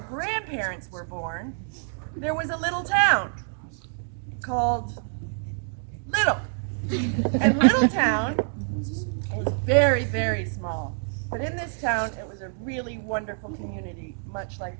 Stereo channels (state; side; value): silent; left; 60 dB below the other